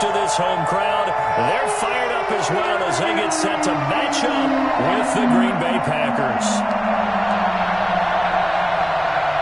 to this home crowd. They're fired up as well as they get set to match up with the Green Bay Packers.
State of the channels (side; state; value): both; identical; correlation 1.00